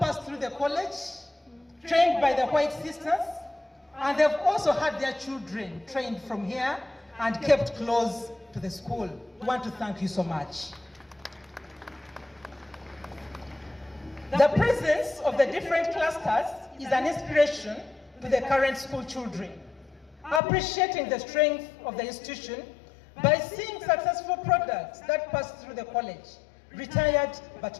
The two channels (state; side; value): drops out; right; at 20.4 s